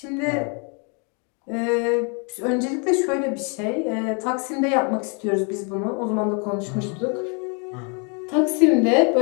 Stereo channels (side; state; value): right; quieter; 36.1 dB